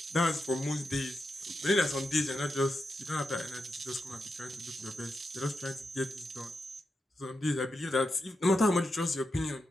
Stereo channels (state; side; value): normal; both; correlation 0.87